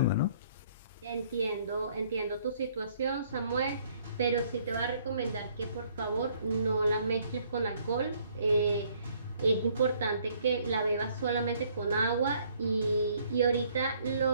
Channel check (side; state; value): both; inverted; correlation -0.64